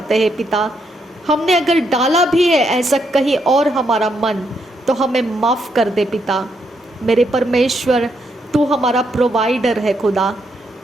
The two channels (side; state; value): both; normal; correlation 0.77